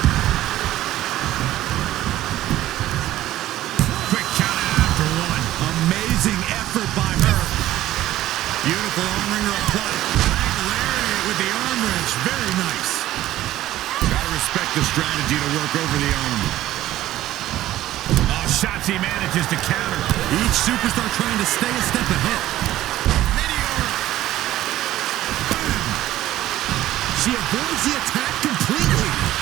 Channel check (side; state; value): left; quieter; 14.4 dB